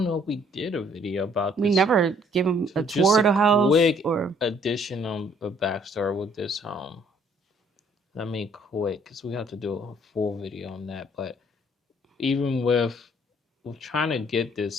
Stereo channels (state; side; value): normal; both; correlation 0.62